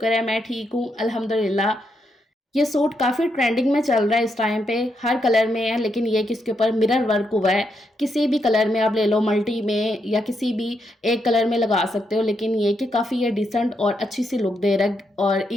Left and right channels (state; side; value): normal; both; correlation 0.80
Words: है मैं ठीक हूँ अल्हम्दुलिल्लाह। ये सूट काफ़ी ट्रेंडिंग में चल रहा है इस टाइम पे, हर कलर में है, लेकिन ये कि इसके ऊपर मिरर वर्क हुआ है। किसी भी कलर में आप ले लो, मल्टी में या किसी भी एक कलर में लगा सकते हो, लेकिन ये कि काफ़ी ये डिसेंट और अच्छी सी लुक दे रहा है और